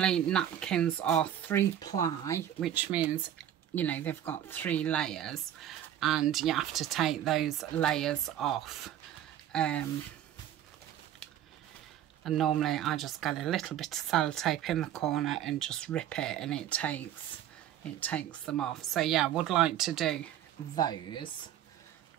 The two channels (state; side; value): quieter; left; 11.1 dB